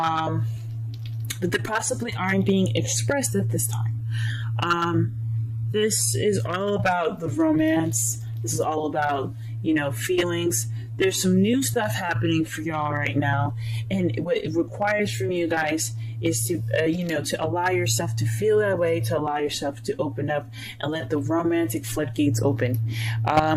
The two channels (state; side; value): identical; both; correlation 1.00